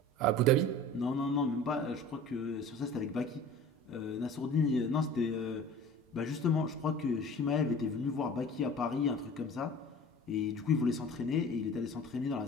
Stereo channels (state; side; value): normal; both; correlation 0.41